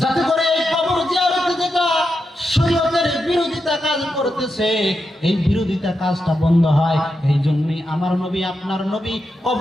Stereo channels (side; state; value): both; normal; correlation 0.87